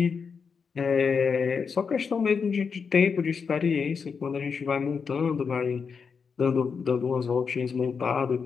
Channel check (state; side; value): quieter; right; 5.8 dB